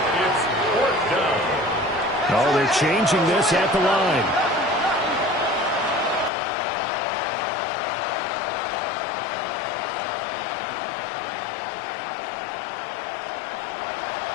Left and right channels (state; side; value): drops out; right; at 6.3 s